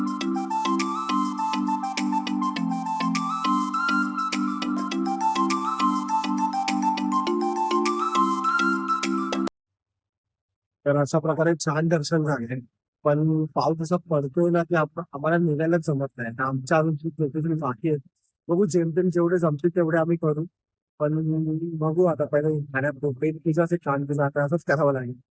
तर अशा प्रकारे छान दर्शन झाले. पण पाऊस असा पडतोय ना की आम्हाला निघायलाच जमत नाही. तर आमच्या अजून खूप लोकेशन बाकी आहेत. बघू, जेमतेम जेवढे जमतील तेवढे आम्ही करू. पण बघू आता, पहिले खाण्यात तुझं असे छान तुझं आता असंच करावं लागेल.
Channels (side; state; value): both; identical; correlation 1.00